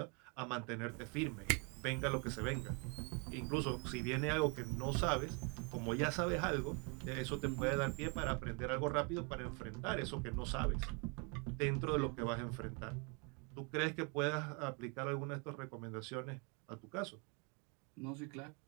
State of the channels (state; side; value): quieter; left; 34.0 dB